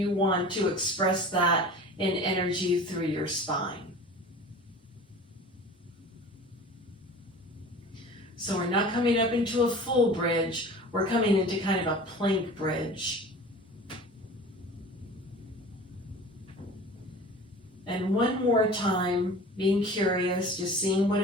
want to express that in energy through your spine. So we're not coming up into a full bridge, we're coming into kind of a plank bridge. And one more time, being curious, just seeing what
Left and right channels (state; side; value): normal; both; correlation 0.40